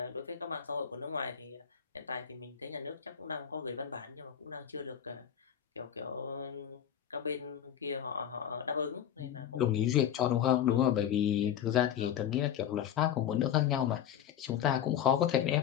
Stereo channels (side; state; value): right; quieter; 9.7 dB